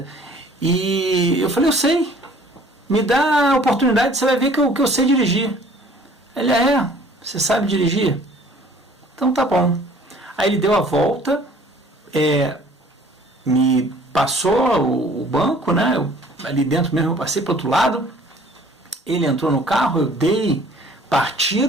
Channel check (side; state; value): both; normal; correlation 0.53